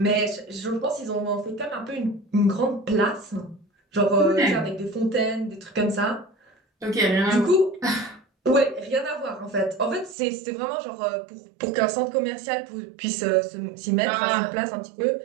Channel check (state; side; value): drops out; left; at 10.2 s